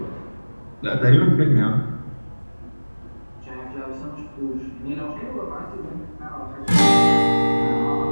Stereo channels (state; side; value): inverted; both; correlation -1.00